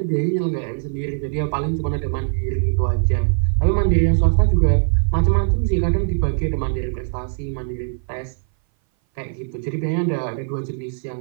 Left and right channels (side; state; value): left; silent; 60 dB below the other